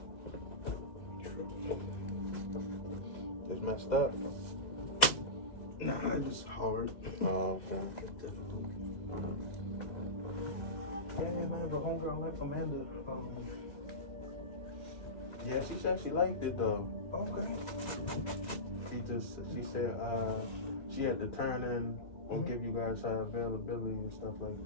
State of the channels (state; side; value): late; right; 2.0 ms